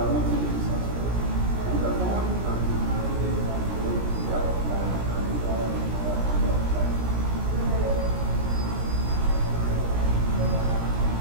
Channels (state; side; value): late; left; 17 ms